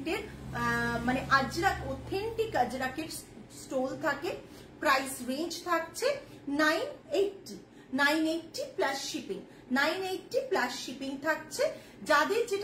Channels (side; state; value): both; identical; correlation 1.00